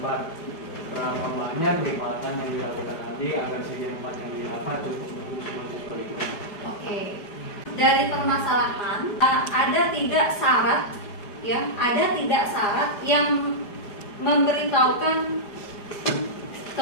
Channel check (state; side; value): late; right; 4.9 ms